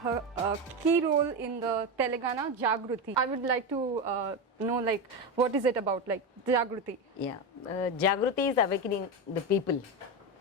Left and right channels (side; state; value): both; normal; correlation 0.15